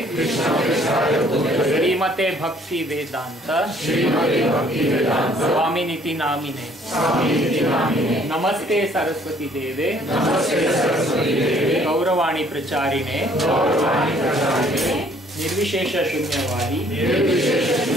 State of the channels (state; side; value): normal; both; correlation 0.60